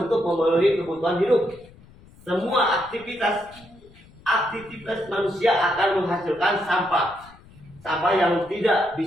untuk memenuhi kebutuhan hidup. Semua aktivitas manusia akan menghasilkan sampah yang tidak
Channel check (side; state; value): left; noise; rumble, 24 dB below the sound